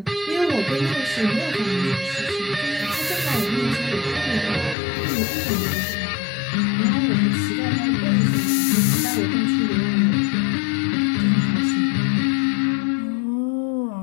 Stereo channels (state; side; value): drops out; right; at 4.8 s